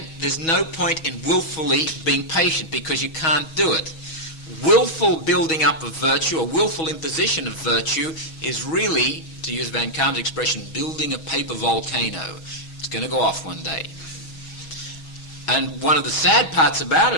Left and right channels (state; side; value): late; right; 6.2 ms